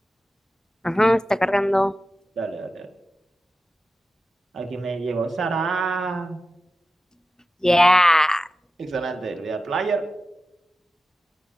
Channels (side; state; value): both; normal; correlation 0.93